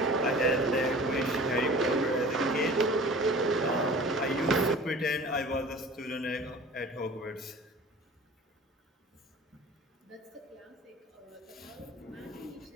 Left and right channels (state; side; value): normal; both; correlation 0.43